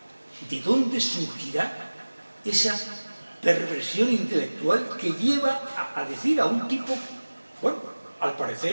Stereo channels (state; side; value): inverted; both; correlation -1.00